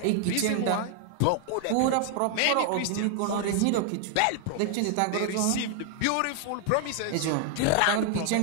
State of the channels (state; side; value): different; both; correlation 0.00